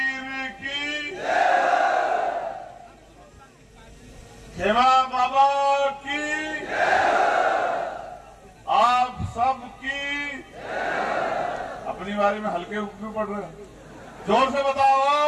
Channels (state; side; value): identical; both; correlation 1.00